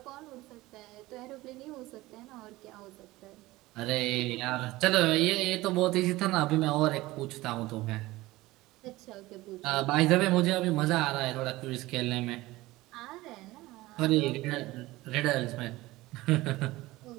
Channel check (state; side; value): quieter; left; 18.9 dB